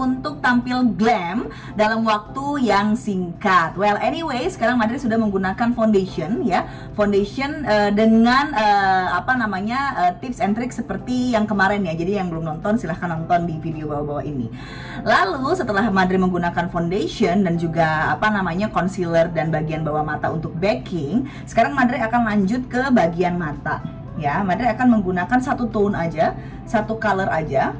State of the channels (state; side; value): identical; both; correlation 1.00